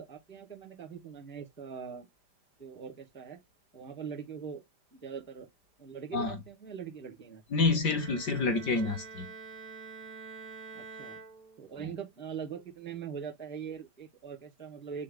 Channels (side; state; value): right; late; 5.0 ms